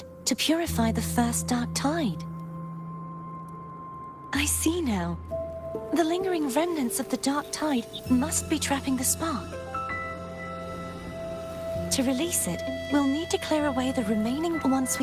to purify the first dark tide. I see now. The lingering remnants of the dark tide must be trapping the spark. To release it, we'll need to clear away the remaining. Once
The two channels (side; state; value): both; identical; correlation 1.00